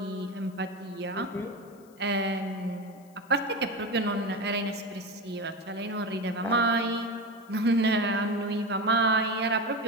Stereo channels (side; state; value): left; noise; hiss, 29 dB below the sound